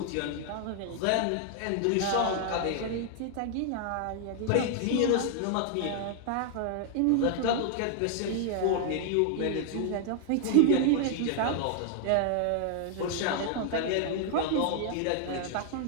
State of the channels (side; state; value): both; different; correlation 0.00